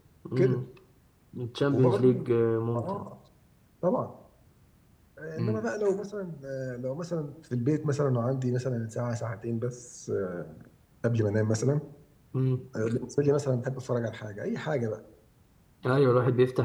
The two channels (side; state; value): both; identical; correlation 1.00